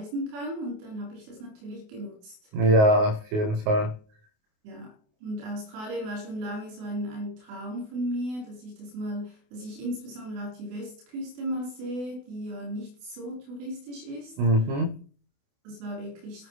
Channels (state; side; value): late; left; 28 ms